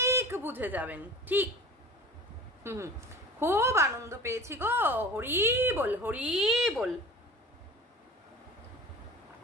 বুঝে যাবেন। ঠিক, খুব আনন্দ পেয়েছি গো, হরি বল হরি বল।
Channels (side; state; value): both; normal; correlation 0.39